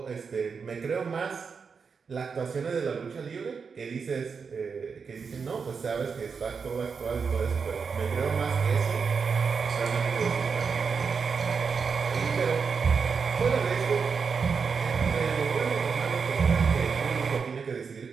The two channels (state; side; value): quieter; left; 5.6 dB